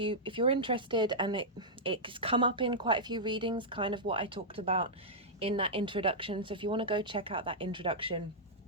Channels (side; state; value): both; normal; correlation -0.09